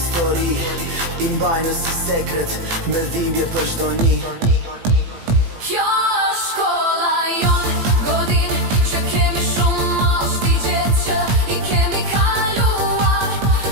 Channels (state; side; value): late; left; 18 ms